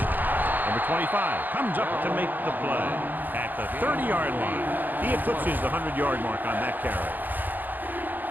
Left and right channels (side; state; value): left; late; 0.087 ms